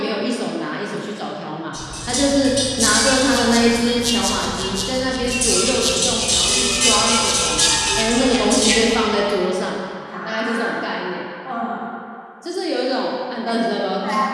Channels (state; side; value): identical; both; correlation 1.00